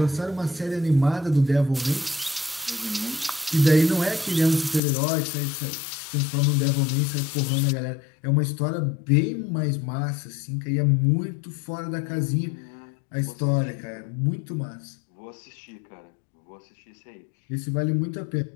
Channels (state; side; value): drops out; right; at 4.8 s